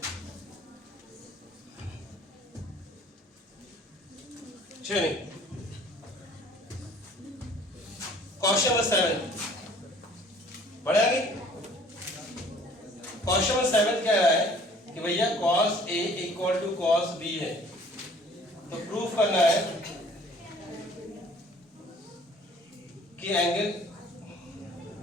चलिए क्वेश्चन नंबर 7 बढ़िया कि क्वेश्चन नंबर 7 कह रहा है कि भैया cos A = cos B है, तो प्रूफ करना है कि एंगल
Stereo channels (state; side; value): normal; both; correlation 0.54